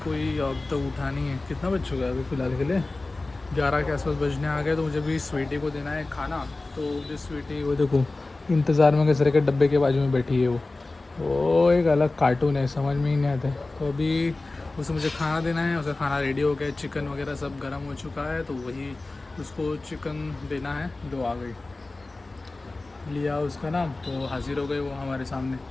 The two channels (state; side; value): quieter; right; 3.2 dB